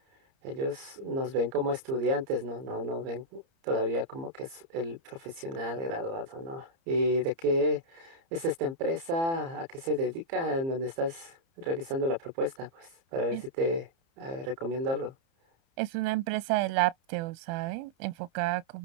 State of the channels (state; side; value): late; left; 30 ms